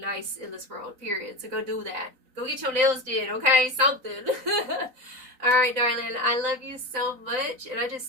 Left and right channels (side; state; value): left; late; 3.9 ms